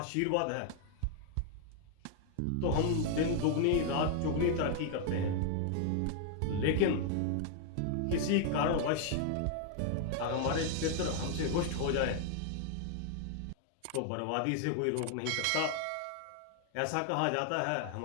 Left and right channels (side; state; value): both; different; correlation 0.00